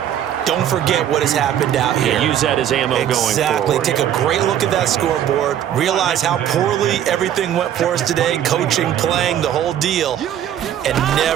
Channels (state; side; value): quieter; left; 10.5 dB